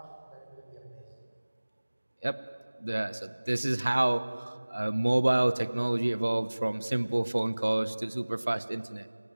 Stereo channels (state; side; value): inverted; both; correlation -1.00